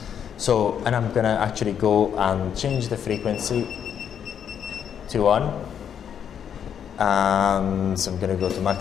So, and I'm gonna actually go and change the frequency to 1, and I'm gonna go to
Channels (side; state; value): right; quieter; 8.4 dB